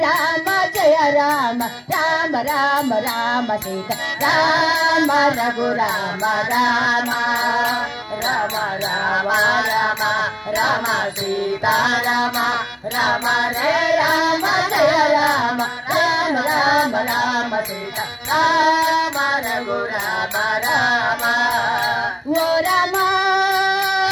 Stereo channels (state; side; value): identical; both; correlation 1.00